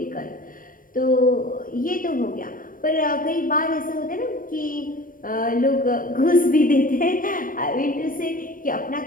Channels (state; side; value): late; right; 0.40 ms